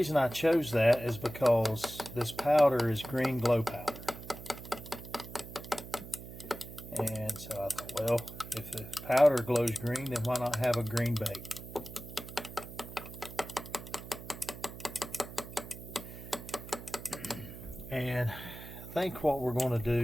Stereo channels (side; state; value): right; noise; hum, 12 dB below the sound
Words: I chose that is because this powder is green glow powder. And so I thought, well, if the powder glows green, then why not have a green bait? And I think what we're going to